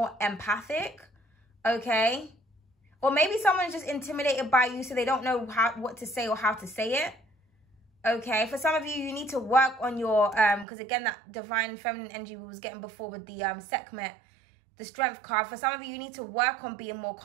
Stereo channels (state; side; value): drops out; left; at 10.7 s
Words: empathic, okay? Or maybe someone's just intimidated by you, so they don't know what to say or how to say it, okay? For some of you, you need to work on your, because again, that divine feminine energy we was getting before with the Sekhmet, the strength card. For some of you, you need to work on being more